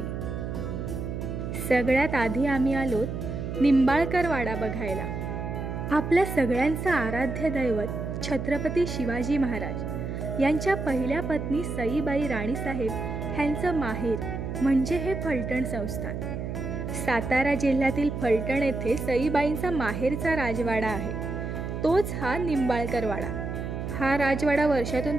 सगळ्यात आधी आम्ही आलोत निंबाळकर वाडा बघायला. आपल्या सगळ्यांचं आराध्य दैवत छत्रपती शिवाजी महाराज यांच्या पहिल्या पत्नी सईबाई राणीसाहेब ह्यांचं माहेर म्हणजे हे फलटण संस्थान. सातारा जिल्ह्यातील फलटण येथे सईबाईंचा माहेरचा राजवाडा आहे. तोच हा निंबाळकर वाडा. हा राजवाडा वर्षातून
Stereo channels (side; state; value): right; noise; hum, 5 dB below the sound